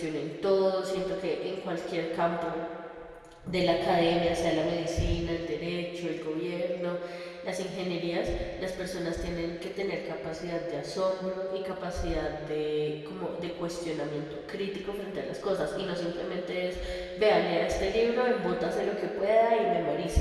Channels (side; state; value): both; identical; correlation 1.00